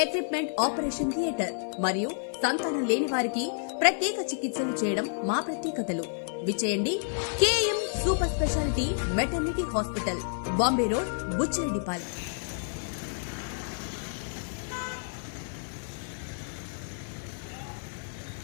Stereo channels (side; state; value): right; silent; 56 dB below the other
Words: equipment operation theatre మరియు సంతానం లేని వారికి ప్రత్యేక చికిత్సలు చేయడం మా ప్రత్యేకతలు. విచేయండి KM super speciality maternity hospital, Bombay road, Buchireddipalem.